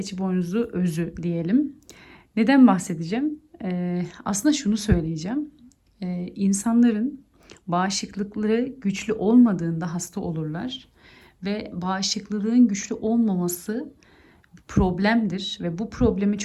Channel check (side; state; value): both; identical; correlation 1.00